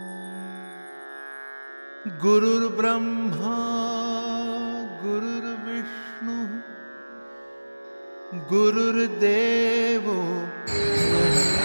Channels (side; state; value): both; inverted; correlation -1.00